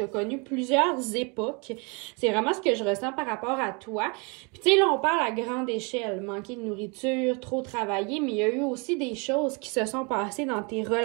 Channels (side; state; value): left; quieter; 31.6 dB